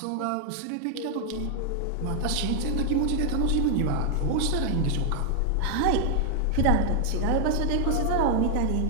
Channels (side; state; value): both; different; correlation 0.00